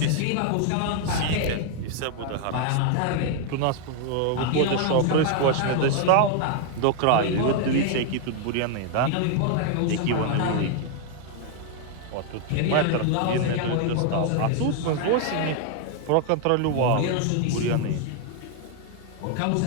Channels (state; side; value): different; both; correlation 0.00